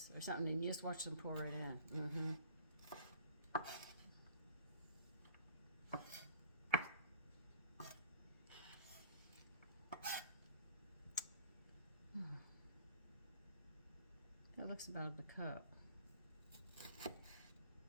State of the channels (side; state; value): both; inverted; correlation -0.45